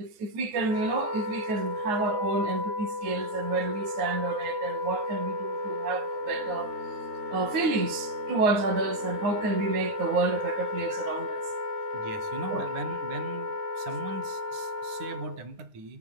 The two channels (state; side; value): late; left; 9.6 ms